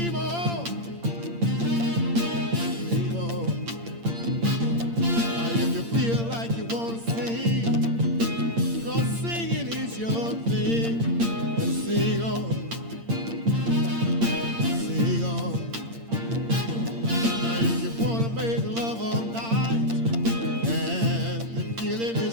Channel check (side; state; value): left; late; 8.7 ms